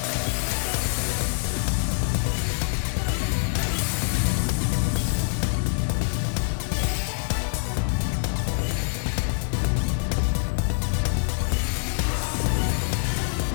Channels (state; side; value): silent; right; 62 dB below the other